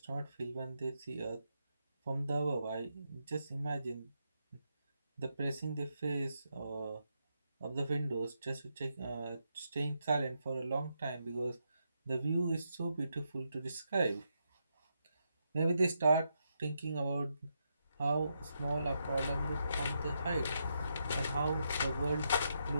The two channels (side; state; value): both; inverted; correlation -0.82